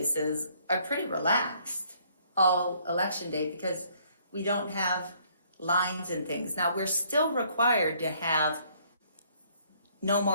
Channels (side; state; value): both; inverted; correlation -0.64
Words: are pretty relaxed all election day because we don't have lines and things. Now, we're still required to have no